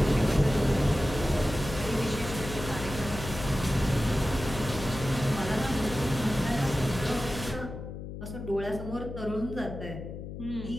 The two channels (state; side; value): noise; left; hum, 9 dB below the sound